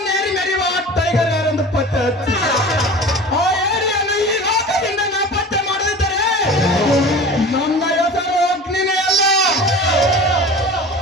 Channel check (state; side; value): normal; both; correlation 0.37